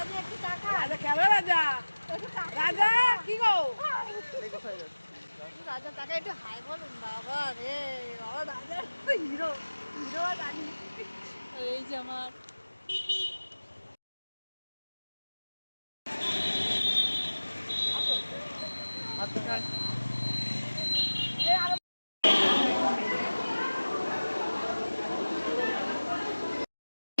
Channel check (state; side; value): inverted; both; correlation -1.00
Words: একটু টাকা, রাজা কেমন রাজা, রাজা কি গো, রাজা টাকা একটু হাই বলুন বাবা রে, বাবা রাজা হিরো, হিরো আর রানী। এই যে আমার